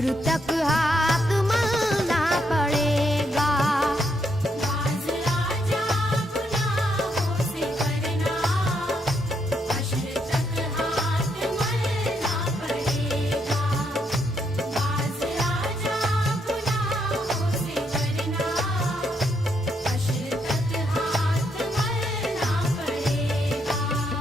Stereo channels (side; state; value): both; normal; correlation 0.76